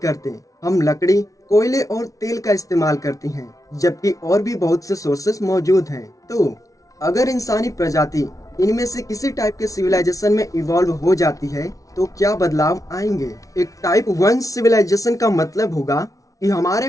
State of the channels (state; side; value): late; right; 0.17 ms